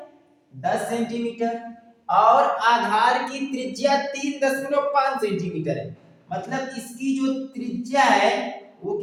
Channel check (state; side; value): identical; both; correlation 1.00